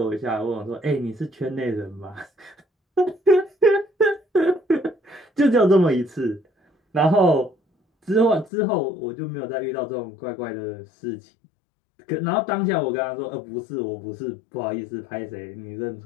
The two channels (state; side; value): drops out; right; at 8.5 s